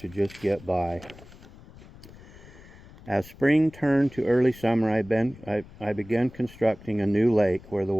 just get by. As spring turned to early summer, I began constructing a new lake where the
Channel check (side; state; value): left; noise; rumble, 20 dB below the sound